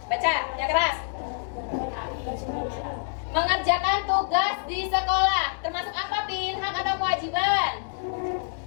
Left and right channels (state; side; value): silent; right; digital silence